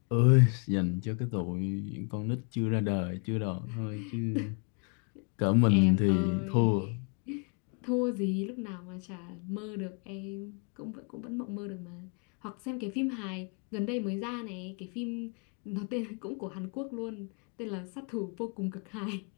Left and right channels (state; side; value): quieter; right; 38.2 dB